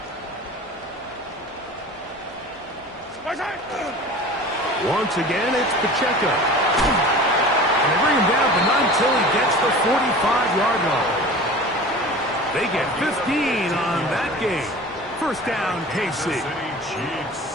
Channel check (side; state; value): both; normal; correlation 0.39